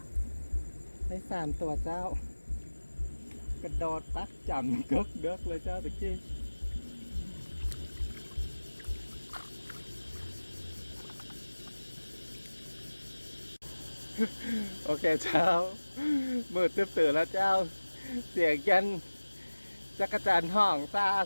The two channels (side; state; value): both; inverted; correlation -1.00